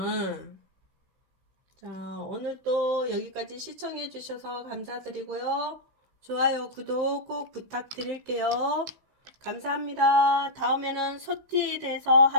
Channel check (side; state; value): left; late; 15 ms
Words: 자, 오늘 또 여기까지 시청해 주셔서 감사드리고요. 좋아요, 구독 꼭 부탁드릴게요. 감사합니다. 다음에는 소띠에 대해서